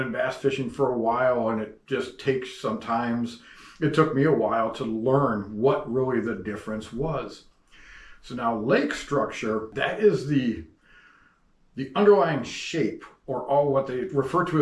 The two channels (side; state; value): both; identical; correlation 1.00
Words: bass fishing for a while and it just takes sometimes, it took me a while to learn what really the difference was. So now lake structure, that is the underlying shape or all what they refer to